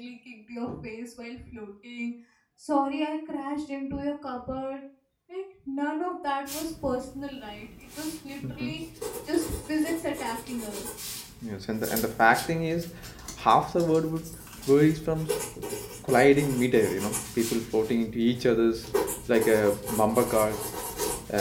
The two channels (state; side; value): identical; both; correlation 1.00